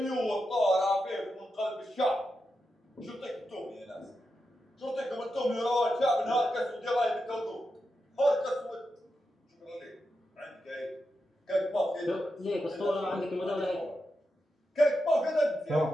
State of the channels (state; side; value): normal; both; correlation 0.88